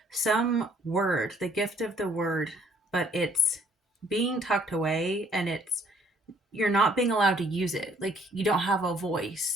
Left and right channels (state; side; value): normal; both; correlation 0.63